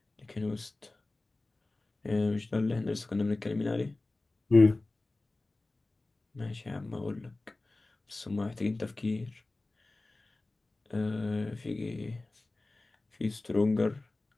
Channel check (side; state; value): right; quieter; 3.0 dB